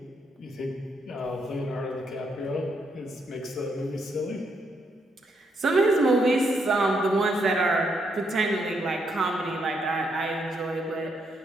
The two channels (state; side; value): normal; both; correlation 0.76